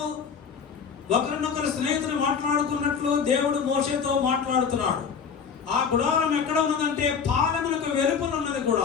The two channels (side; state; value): right; quieter; 6.4 dB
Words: ఒకరినొకరు స్నేహితులు మాట్లాడుకున్నట్లు దేవుడు మోషేతో మాట్లాడుతున్నాడు. ఆ గుడారం ఎక్కడ ఉన్నదంటే పాలెములకు వెలుపల ఉన్నది